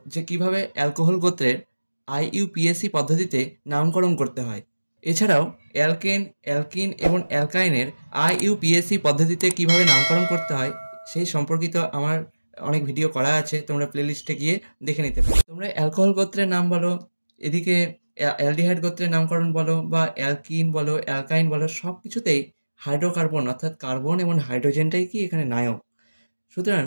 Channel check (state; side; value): inverted; both; correlation -1.00